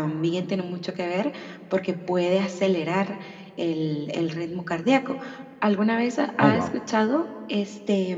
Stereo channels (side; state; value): both; identical; correlation 1.00